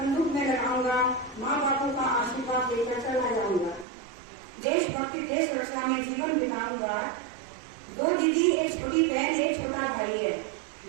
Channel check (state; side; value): drops out; left; at 3.9 s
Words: में लगाऊंगा, माँ बापों का आशीर्वाद लेकर चला जाऊंगा, देशभक्ति देश रक्षा में जीवन बिताऊंगा। 2 दीदी, एक छोटी बहन, एक छोटा भाई है,